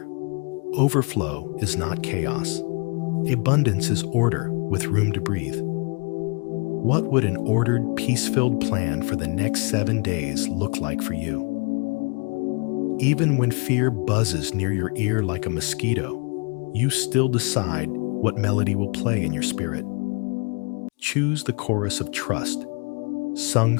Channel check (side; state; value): right; quieter; 33.3 dB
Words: overflow is not chaos. Abundance is order with room to breathe. What would an ordered, peace-filled plan for the next 7 days look like for you? Even when fear buzzes near your ear like a mosquito, you still decide what melody will play in your spirit. Choose the chorus of trust, sung